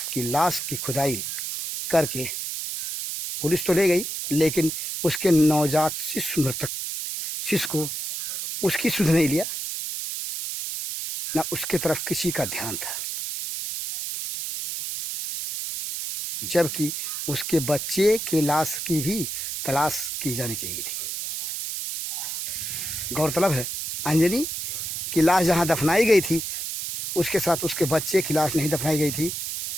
की लाश की खुदाई करके पुलिस तो ले गई, लेकिन उसके नवजात शिशु, मृतक शिशु को उसकी सुध नहीं लिया, ना उसके तरफ किसी का ध्यान था, जबकि उसके बच्चे के लाश की भी तलाश की जानी चाहिए थी। गौरतलब है, अंजलि की लाश जहाँ दफनाई गई थी, उसके साथ उसके बच्चे की लाश नहीं दफनाई गई थी।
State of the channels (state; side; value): noise; right; hiss, 4 dB below the sound